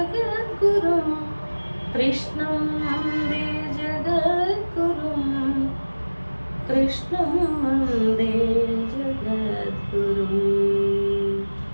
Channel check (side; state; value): both; inverted; correlation -1.00